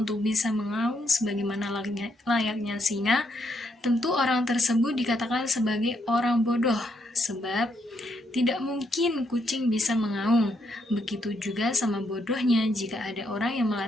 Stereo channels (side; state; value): both; normal; correlation 0.76